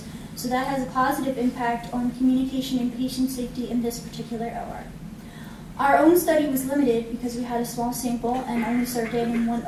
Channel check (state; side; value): identical; both; correlation 1.00